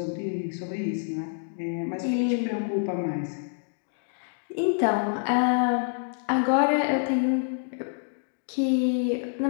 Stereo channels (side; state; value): right; silent; digital silence